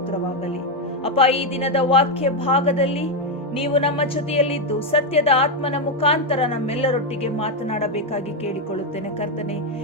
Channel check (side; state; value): both; normal; correlation 0.05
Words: ಅಪ್ಪ, ಈ ದಿನದ ವಾಕ್ಯ ಭಾಗದಲ್ಲಿ ನೀವು ನಮ್ಮ ಜೊತೆಯಲ್ಲಿದ್ದು ಸತ್ಯದ ಆತ್ಮನ ಮುಖಾಂತರ ನಮ್ಮೆಲ್ಲರೊಟ್ಟಿಗೆ ಮಾತನಾಡಬೇಕಾಗಿ ಕೇಳಿಕೊಳ್ಳುತ್ತೇನೆ ಕರ್ತನೆ.